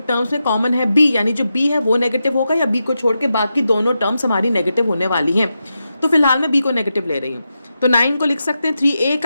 टर्म्स में कॉमन है b, यानी जो b है वो नेगेटिव होगा, या b को छोड़ के बाकी दोनों टर्म्स हमारी नेगेटिव होने वाली हैं। तो फिलहाल मैं b को नेगेटिव ले रही हूँ। तो 9 को लिख सकते हैं 3a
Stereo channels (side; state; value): both; inverted; correlation -0.88